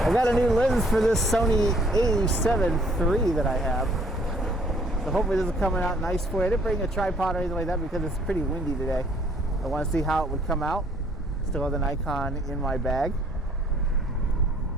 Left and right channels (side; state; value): both; normal; correlation 0.61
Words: got a new lens for this Sony A7 III that I have. So hopefully this is coming out nice for you. I didn't bring a tripod or anything like that because it's pretty windy today. I want to see how it would come out. Still have the Nikon in my bag.